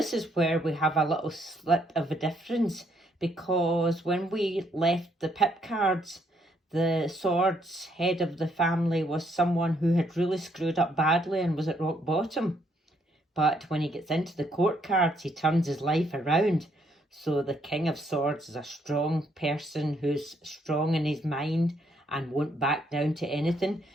is where we have a little slip of a difference, because when we left the pip cards, the swords head of the family was someone who had really screwed up badly and was at rock bottom. But when he gets into the court cards, he turns his life around. So the King of Swords is a strong person who's strong in his mind and won't back down to anything.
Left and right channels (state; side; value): normal; both; correlation 0.71